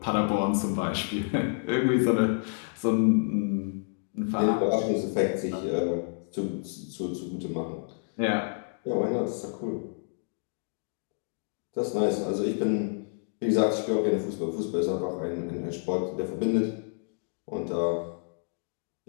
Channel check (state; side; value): silent; right; 58 dB below the other